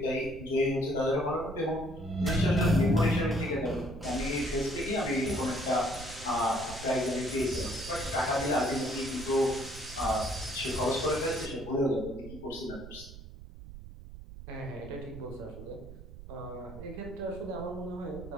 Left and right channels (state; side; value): noise; right; rumble, 14 dB below the sound